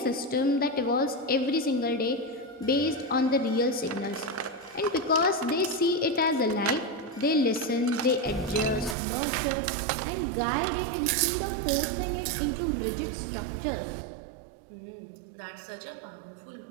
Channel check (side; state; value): left; drops out; at 9.0 s